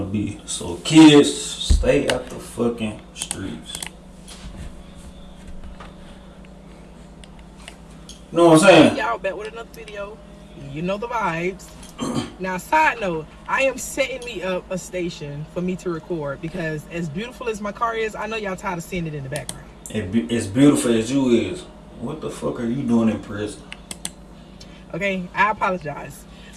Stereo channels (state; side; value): identical; both; correlation 1.00